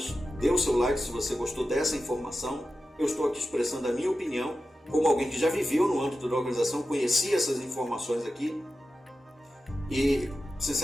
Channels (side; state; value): both; normal; correlation 0.92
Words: dê o seu like se você gostou dessa informação. Eu estou aqui expressando a minha opinião, como alguém que já viveu no âmbito da organização, conhecia essas informações aqui, e,